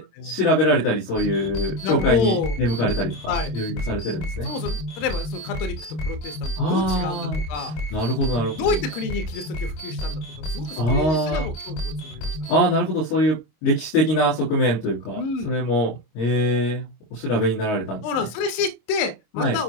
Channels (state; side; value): late; right; 26 ms